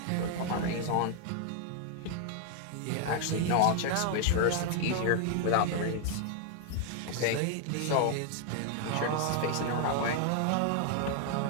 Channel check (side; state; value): both; different; correlation 0.00